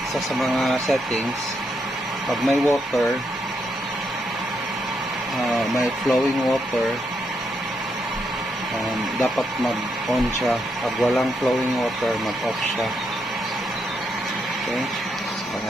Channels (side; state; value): both; normal; correlation 0.79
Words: sa mga settings, pag may water, may flowing water, dapat mag-on siya. Pag walang flowing water, mag-off siya. Okay, so,